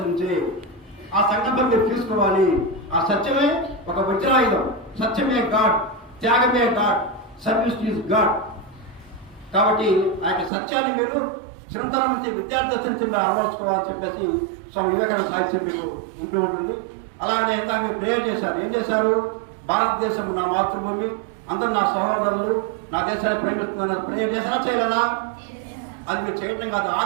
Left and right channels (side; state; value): left; drops out; at 10.5 s